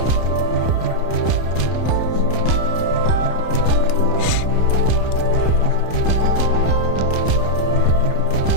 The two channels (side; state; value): right; late; 31 ms